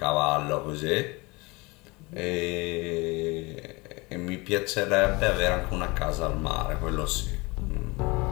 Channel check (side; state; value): right; quieter; 25.2 dB